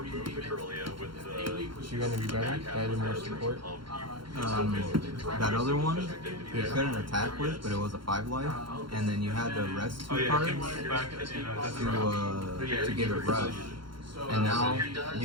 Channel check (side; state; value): left; late; 0.73 ms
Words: the Corellia with the... Is she going to be better? Added more support? That other one, you couldn't attack with, but it was a 5-life. And then you had the rest 2 cards to give it rush. And now